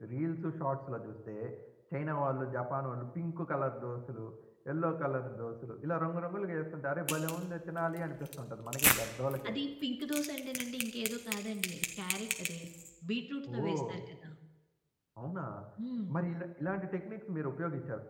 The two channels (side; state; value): both; identical; correlation 1.00